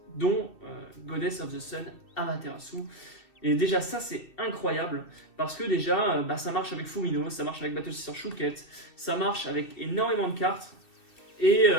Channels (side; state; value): right; late; 2.5 ms